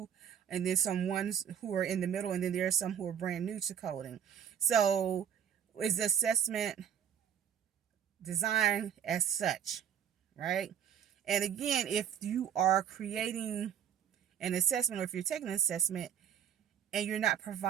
and then some ones who are in the middle, and then there are some who are brand new to coding. So is the assessment designed as such, right? And again, if you are creating an assessment, or if you're taking an assessment and you're not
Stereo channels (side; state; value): left; quieter; 8.9 dB